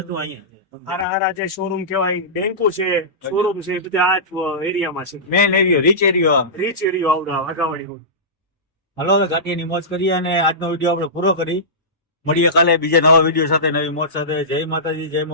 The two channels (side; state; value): both; normal; correlation -0.18